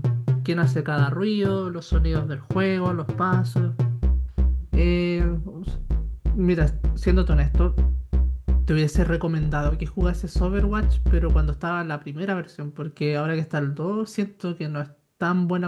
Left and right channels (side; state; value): both; identical; correlation 1.00